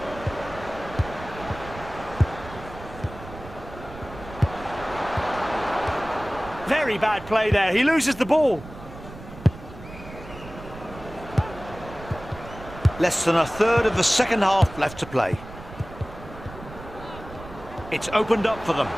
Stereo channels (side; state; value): right; noise; rumble, 15 dB below the sound